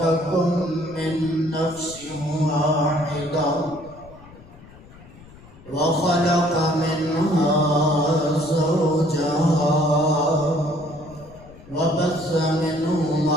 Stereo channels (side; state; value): left; noise; rumble, 21 dB below the sound